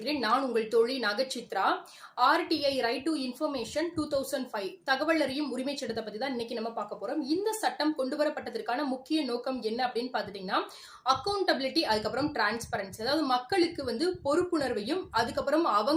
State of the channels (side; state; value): both; identical; correlation 1.00